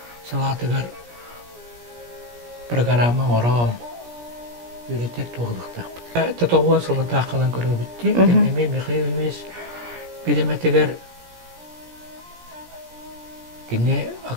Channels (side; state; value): left; late; 17 ms